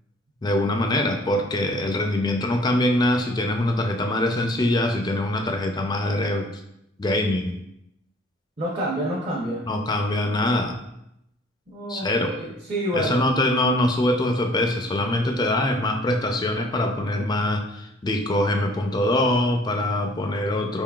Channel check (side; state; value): both; normal; correlation 0.55